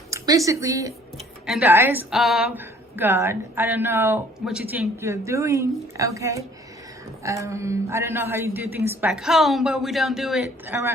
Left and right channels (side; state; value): both; normal; correlation 0.57